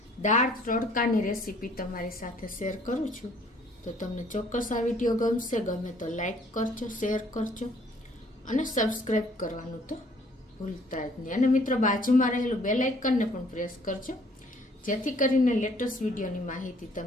દાળ તડકાની રેસીપી તમારી સાથે શેર કરું છું. તો તમને ચોક્કસ આ વિડીયો ગમશે. ગમે તો લાઈક કરજો, શેર કરજો અને સબસ્ક્રાઈબ કરવાનું તો ભૂલતા જ નહીં. અને મિત્રો બાજુમાં રહેલું બેલ આઇકનને પણ પ્રેસ કરજો, જેથી કરીને લેટેસ્ટ વિડીયોની માહિતી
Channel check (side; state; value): both; normal; correlation 0.60